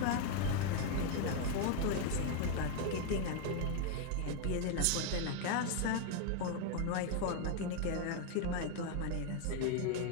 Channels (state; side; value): different; both; correlation 0.01